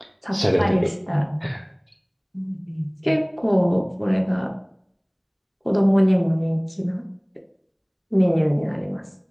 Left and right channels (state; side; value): identical; both; correlation 1.00